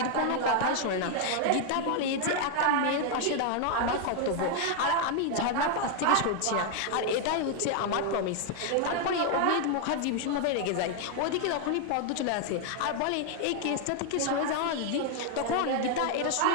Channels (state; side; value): different; both; correlation 0.00